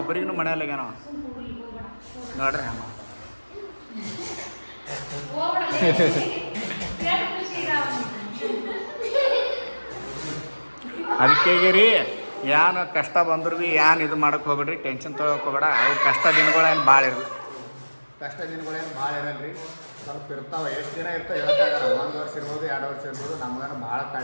ಮನೆಯಲ್ಲಾಗ್ಯಾನ ನೋಡ್ರಿ. ಹಂಗ ಅದಕ್ಕೆ ರೀ ಏನು ಕಷ್ಟ ಬಂದ್ರು ಭೀ ಏನು ಇದು ಮಾಡೋಕೆ ಹೋಗ್ಬೇಡ್ರಿ, ಟೆನ್ಷನ್ ತೊಗೊಳಕ್ಕೆ ಹೋಗ್ಬೇಡ. ಅವು ಕಷ್ಟ ದಿನಗಳೇನು ಭಾಳ ಇರಲ್ಲ, ಇರಲ್ಲ ರೀ. ಸ್ವಲ್ಪ ಇರ್ತಾವೆ, ಎಷ್ಟು ದಿನ ಇರ್ತಾವೆ ಹೇಳೋಕ್ಕಾಗಲ್ಲ. 1 ವರ್ಷ ಇರ್ಬೋದು 2 ವರ್ಷ ಇರ್ಬೋದು. ನಮಗೇನು ಭಾಳ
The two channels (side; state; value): both; inverted; correlation -1.00